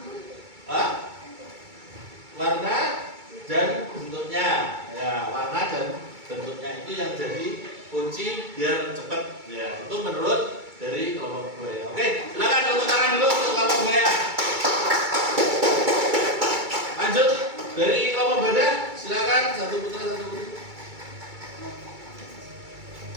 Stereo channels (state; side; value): late; left; 2.3 ms